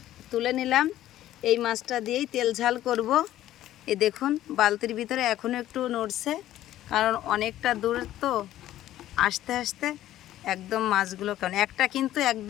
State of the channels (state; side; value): quieter; right; 13.4 dB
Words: তুলে নিলাম। এই মাছটা দিয়েই তেল ঝাল করব। এ দেখুন, বালতির ভিতরে এখনও একটু নড়ছে, কারণ অনেকটা দূর তো, আস্তে আস্তে একদম মাছগুলো কেমন, একটা কিন্তু